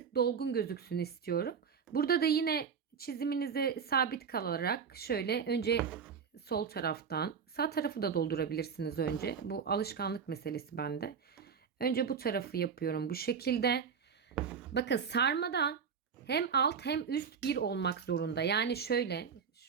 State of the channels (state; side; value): quieter; left; 6.6 dB